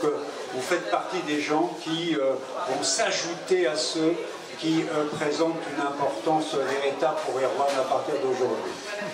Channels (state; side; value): identical; both; correlation 1.00